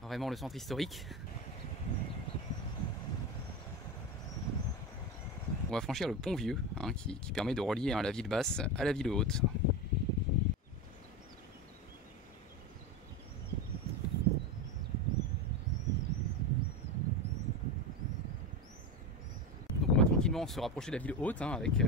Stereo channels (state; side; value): normal; both; correlation 0.19